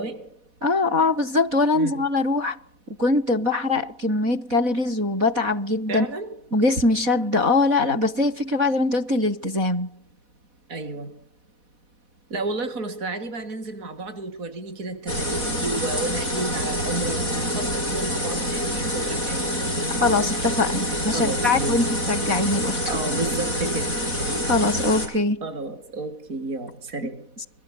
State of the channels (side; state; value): left; late; 4.1 ms